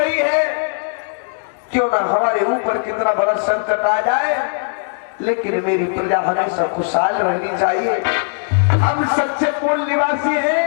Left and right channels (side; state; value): right; silent; digital silence